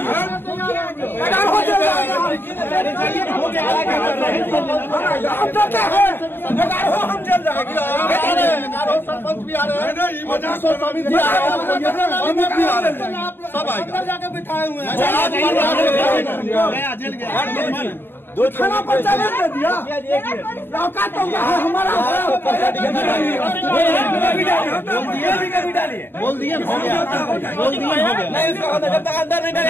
हम डरते हैं, 11 हम चल जाएंगे। सरपंच भी आ रहे हैं, सब आएगा। जाके बिठाए हुए हैं। दो थाना पर चैलेंज दे दिया। औकात तो हमारा बोल दिए हो गया, नहीं, इसका जब तक अंदर नहीं डाले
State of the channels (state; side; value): late; right; 0.10 ms